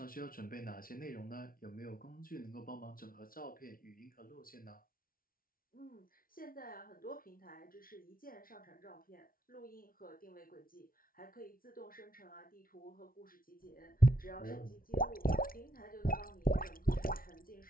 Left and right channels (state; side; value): late; right; 0.42 ms